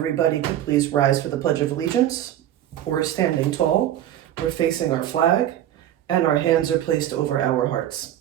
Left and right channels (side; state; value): left; quieter; 11.9 dB